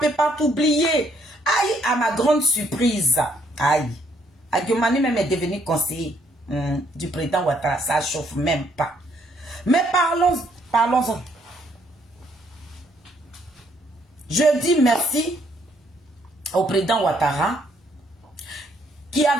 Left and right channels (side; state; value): both; normal; correlation 0.69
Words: peut pas t'oublier. Aïe, à ma grande surprise, aïe, Diomani même est devenu conseiller du président Ouattara, ça ne chauffe même pas. Mais parlons-en. Je dis merci au président Ouattara, qui